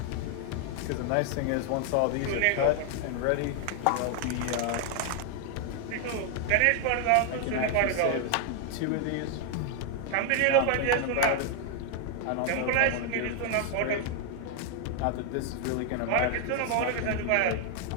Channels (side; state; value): both; different; correlation 0.00